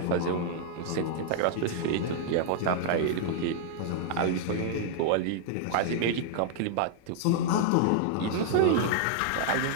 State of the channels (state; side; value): different; both; correlation -0.01